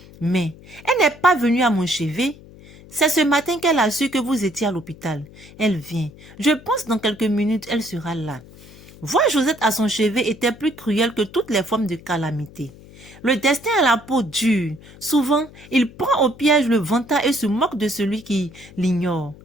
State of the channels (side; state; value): left; noise; hum, 21 dB below the sound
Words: Mais, elle n'est pas venue à mon chevet. C'est ce matin qu'elle a su que vous étiez à l'hôpital. Elle vient. Je pense dans quelques minutes, elle sera là. » Voir Josette à son chevet était plus cruel que toutes les formes de calamité. Le destin a la peau dure. Souvent, il prend au piège le vantard et se moque de celui qui l'ignore.